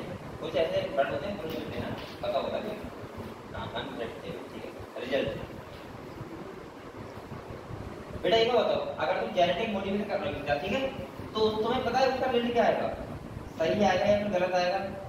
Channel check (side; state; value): both; identical; correlation 1.00